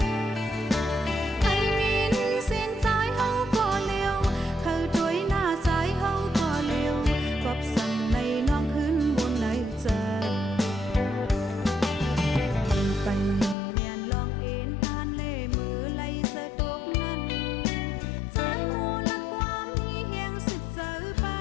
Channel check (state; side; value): drops out; right; at 13.6 s